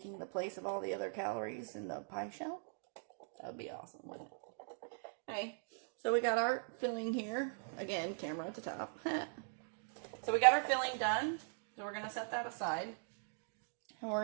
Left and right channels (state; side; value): silent; left; digital silence